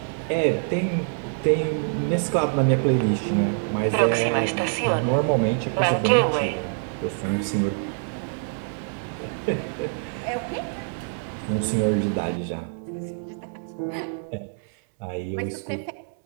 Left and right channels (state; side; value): silent; left; 62 dB below the other